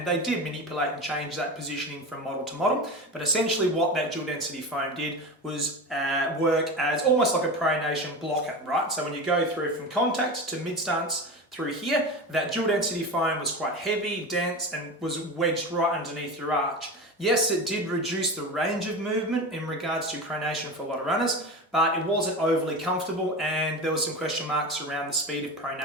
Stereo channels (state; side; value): normal; both; correlation 0.26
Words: they did manipulate and change that positioning from model to model. But essentially what that dual density foam did was work as almost like a pronation blocker, right? So when you go through from contact to mid stance through here, that dual density foam was quite heavy, dense, and was wedged right underneath your arch. Yes, it did reduce the range of movement in regards to pronation for a lot of runners, but it wasn't overly comfortable, and there was some question marks around the speed of